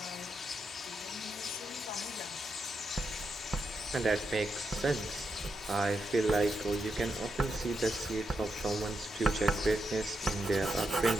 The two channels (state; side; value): normal; both; correlation 0.84